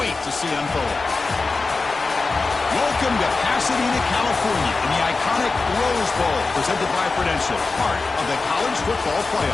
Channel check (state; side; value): quieter; right; 3.9 dB